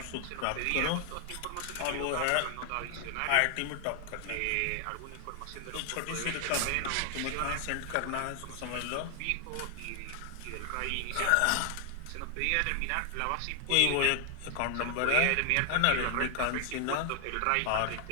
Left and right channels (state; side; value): different; both; correlation -0.01